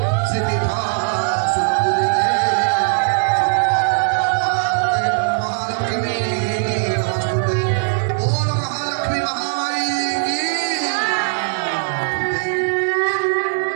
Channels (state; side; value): silent; left; 66 dB below the other